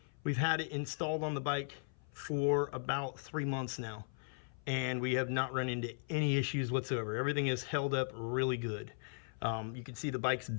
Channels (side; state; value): right; silent; 53 dB below the other